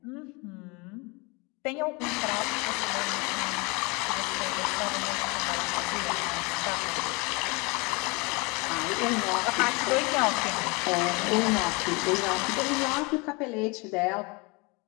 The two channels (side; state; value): right; quieter; 28.2 dB